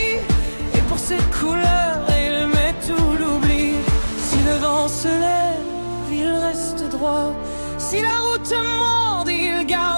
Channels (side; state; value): both; inverted; correlation -1.00